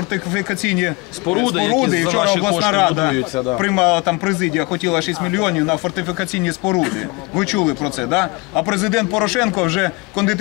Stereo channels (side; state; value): right; quieter; 26.5 dB